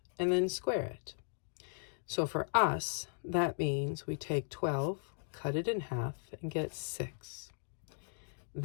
and then square it. So for us, that means we take 12, cut it in half, and get 6.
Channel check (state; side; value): silent; right; digital silence